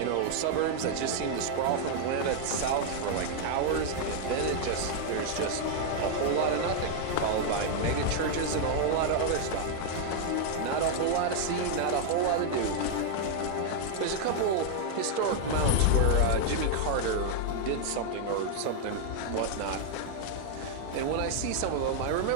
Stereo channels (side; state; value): both; different; correlation 0.00